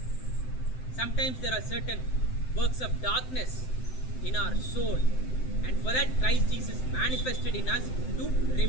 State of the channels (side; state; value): right; late; 7.8 ms